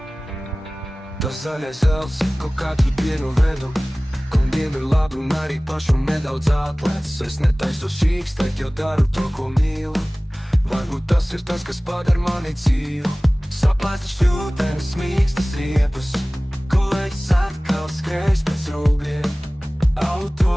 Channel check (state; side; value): normal; both; correlation 0.98